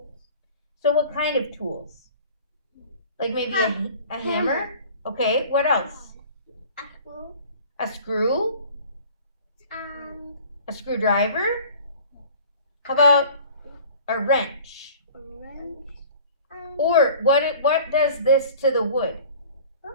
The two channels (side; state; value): both; inverted; correlation -0.46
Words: So what kind of tools? Like maybe a hammer? Okay, what else? A screw. A screw? And A screwdriver? How about a wrench? a wrench. And Or what does this to the wood? Huh?